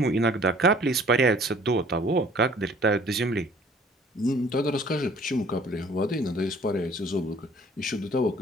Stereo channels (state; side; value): normal; both; correlation 0.54